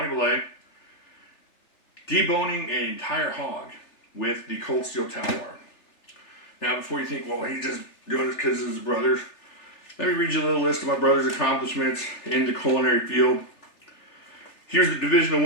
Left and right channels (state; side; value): late; right; 3.4 ms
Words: Belay, deboning an entire hog with the Cold Steel Talwar. Now, before you think, well, he's just doing this because of his brothers, let me read you a little list of my brother's accomplishments in the culinary field. Here's the divisional